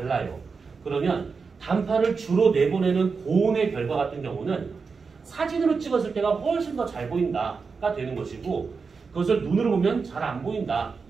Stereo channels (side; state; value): left; quieter; 5.0 dB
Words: 그러면 단파를 주로 내보내는 고온의 별과 같은 경우는 사진으로 찍었을 때가 훨씬 더 잘 보인다가 되는 것이고 그것을 눈으로 보면 잘 안 보인다